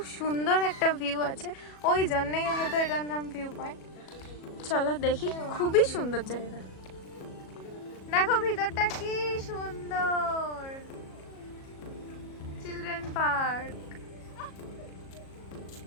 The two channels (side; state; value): right; late; 37 ms